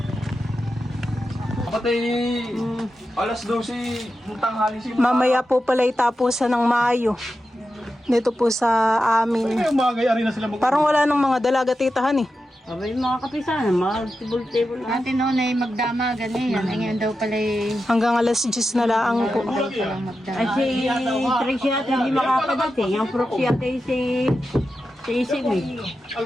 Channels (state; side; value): normal; both; correlation 0.90